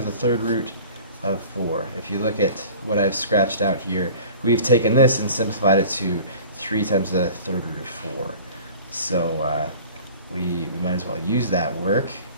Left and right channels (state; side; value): inverted; both; correlation -0.44